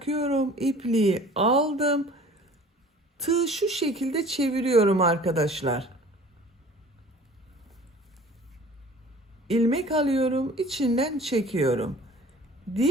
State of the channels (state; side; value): normal; both; correlation 0.47